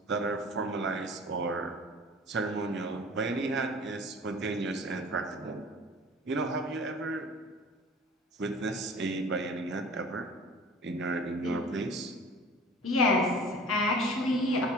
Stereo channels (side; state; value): both; normal; correlation 0.44